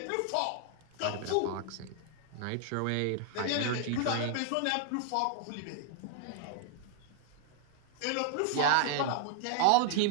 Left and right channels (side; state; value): both; different; correlation 0.00